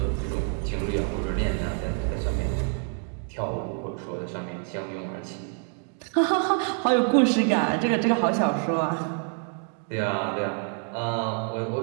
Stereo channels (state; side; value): quieter; left; 38.2 dB